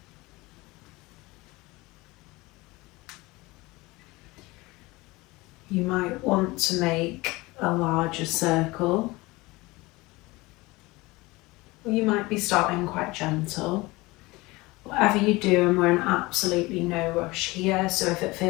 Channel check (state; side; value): quieter; right; 21.9 dB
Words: You might want to make a larger circle, or you might be starting quite gentle. Whatever you do, and we're in absolutely no rush here, so if it